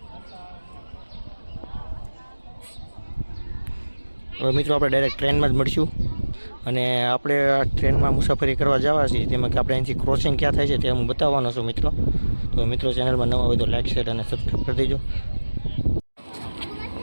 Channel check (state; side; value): inverted; both; correlation -1.00